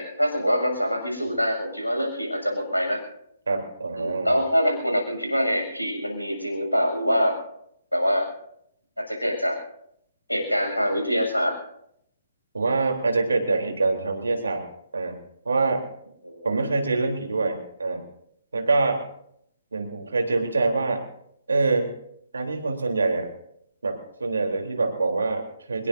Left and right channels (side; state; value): both; inverted; correlation -0.89